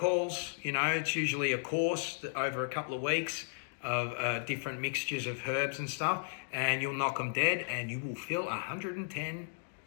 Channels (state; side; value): silent; right; digital silence